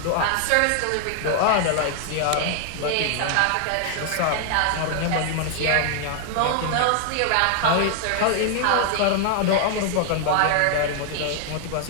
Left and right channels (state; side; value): different; both; correlation 0.00